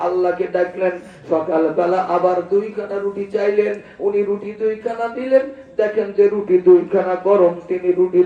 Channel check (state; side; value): identical; both; correlation 1.00